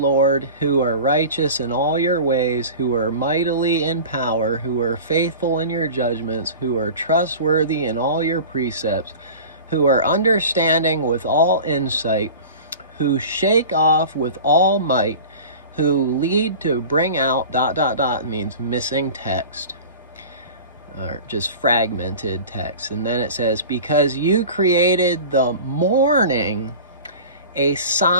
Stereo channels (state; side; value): inverted; both; correlation -0.37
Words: who are righteous in all your ways, who are mightily in power, who are faithful in your judgments, who are trustworthy in all your precepts, who are understanding with all insight, who shake off with all might, who lead to bring out ... means missing text, or just fragmented text. And then it says, because you created the morning, a